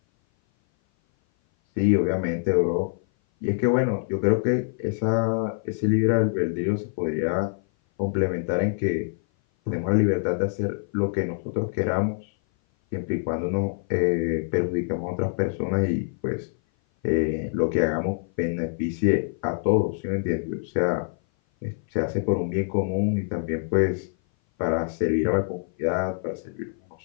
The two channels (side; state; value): right; silent; 57 dB below the other